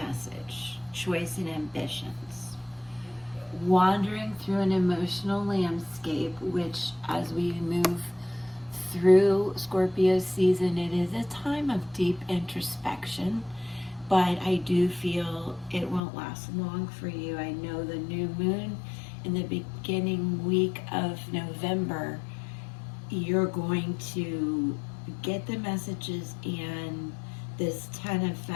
Choice and ambitions. Wandering through an emotional landscape, which as we move through Scorpio season, it is a time of deep introspection, but I do feel it won't last long for you. I know the new moon in the beginning week of November, you're going to get the messages and this 10 of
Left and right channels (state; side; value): drops out; right; at 16.0 s